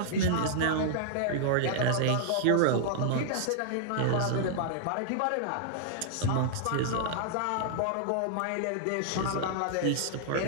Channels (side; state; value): both; different; correlation -0.01